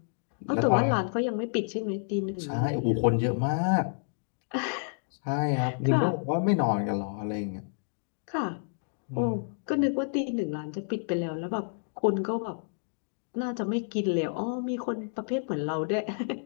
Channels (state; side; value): silent; right; digital silence